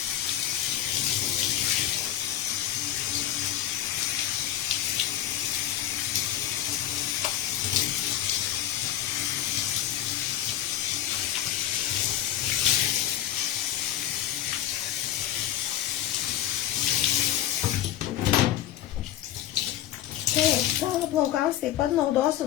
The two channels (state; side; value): quieter; right; 12.3 dB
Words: Savo plaukams taip pat naudosiu